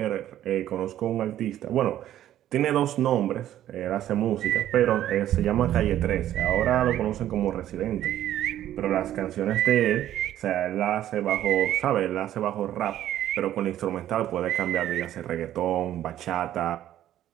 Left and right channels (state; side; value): quieter; left; 12.2 dB